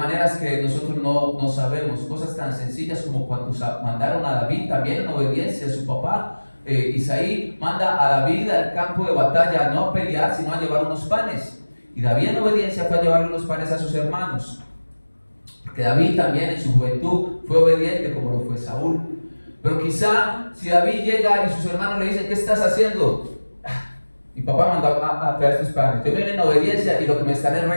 que nosotros no sabemos. Cosas tan sencillas como cuando mandaron a David también en obediencia a su papá. Isaí manda a David al campo de batalla, no a pelear, sino a llevar unos panes. Y David en obediencia fue a llevar unos panes a sus hermanos. Porque David también en su juventud fue obediente como lo fue Saúl. Pero quizá si David llega y sus hermanos le dicen: ¿qué estás haciendo? Mi papá mandó a traer estos panes. Yo vine en obediencia y lo que me están es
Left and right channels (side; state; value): both; inverted; correlation -1.00